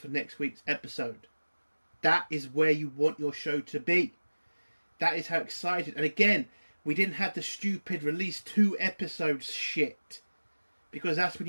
next week's episode. That is where you want your show to be. That is how excited. And again, we didn't have the stupid release 2 episodes shit. Because that's when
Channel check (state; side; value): inverted; both; correlation -1.00